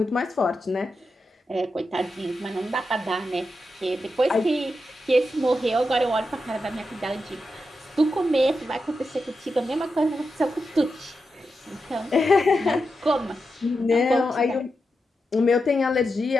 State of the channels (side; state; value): both; normal; correlation 0.88